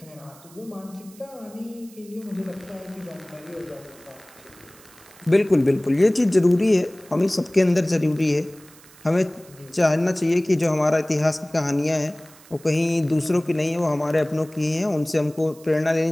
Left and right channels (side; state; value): right; noise; hiss, 24 dB below the sound